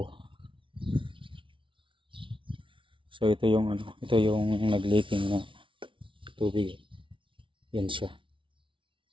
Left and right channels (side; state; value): left; late; 0.25 ms